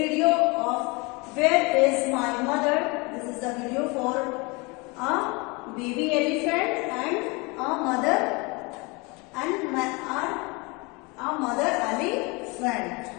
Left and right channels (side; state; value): right; quieter; 27.7 dB